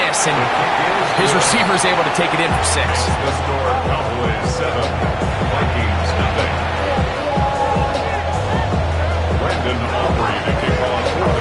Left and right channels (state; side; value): identical; both; correlation 1.00